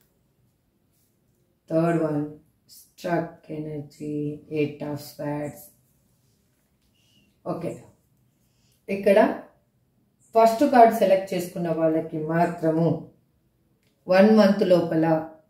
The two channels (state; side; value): identical; both; correlation 1.00